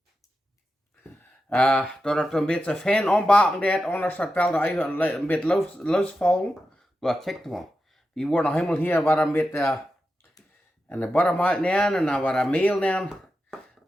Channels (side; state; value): both; normal; correlation 0.90